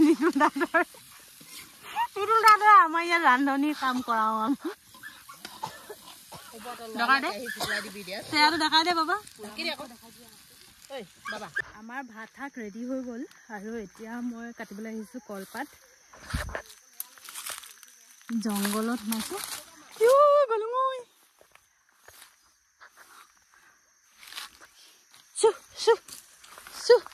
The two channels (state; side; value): identical; both; correlation 1.00